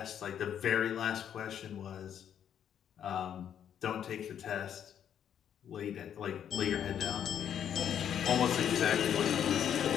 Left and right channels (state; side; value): quieter; right; 9.2 dB